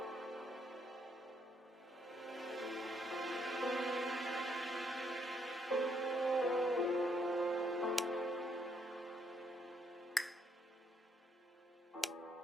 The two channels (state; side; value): normal; both; correlation 0.73